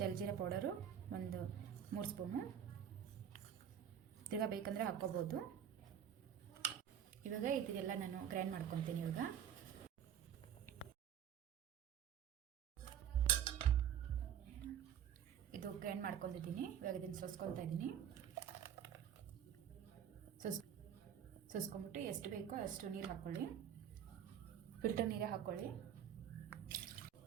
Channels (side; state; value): left; quieter; 9.1 dB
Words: ಪೌಡರು ಒಂದು 3 ಸ್ಪೂನು. ತಿರ್ಗಾ ಬೇಕಂದರೆ ಹಾಕ್ಕೋಬೋದು. ಇವಾಗ ಇದೆಲ್ಲ ನಾನು ಗ್ರೈಂಡ್ ಮಾಡ್ಕೊತೀನಿ. ಇವಾಗ ಇದು ಗ್ರೈಂಡ್ ಮಾಡ್ಕೊಂಡಿದ್ದೀನಿ. ಇವಾಗ ಇದನ್ನು ಸೋಸ್ಕೊತಾ ಇದ್ದೀನಿ. ಸೋಸ್ಕೊಂಡ್ಬಿಟ್ಟು ಎಷ್ಟು ಬೇಕೋ ಅಷ್ಟು ನೀರು ಹಾಕ್ಕೊಳ್ಳಿ. ಫಿಲ್ಟರ್ ನೀರೇ ಹಾಕ್ಕೊಳ್ಳಿ.